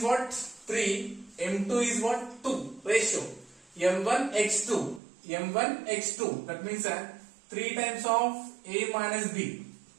what? 3, m2 is what? 2, ratio. m1 x2, m1 x2, that means 3 times of a minus b,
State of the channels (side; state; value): left; drops out; at 5.0 s